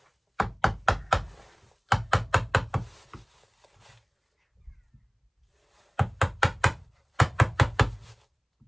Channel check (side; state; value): both; identical; correlation 1.00